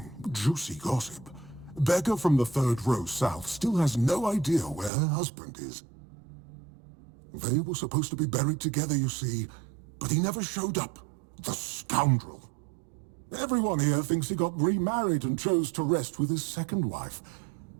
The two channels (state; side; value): drops out; left; at 4.9 s